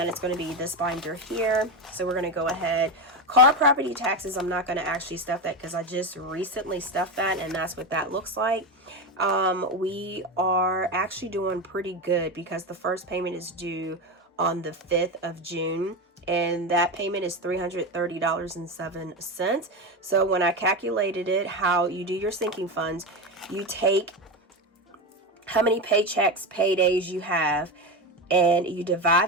it's going to be this binder here. So we're going to go ahead. Car property taxes, I'm not going to actually stuff that because I just recently stuffed that, and that's what that looks like. We are actually doing pretty good because the first payment is due on the 5th of June. And that payment is $330.07. So when I calculated it, how you do your sinking funds, you take how many paychecks, paydays you have, and you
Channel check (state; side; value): normal; both; correlation 0.17